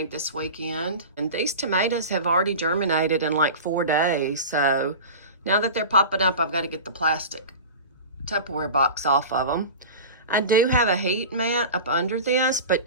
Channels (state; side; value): inverted; both; correlation -0.32